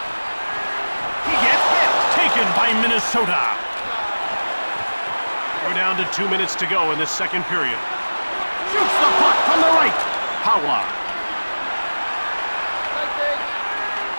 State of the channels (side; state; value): both; inverted; correlation -1.00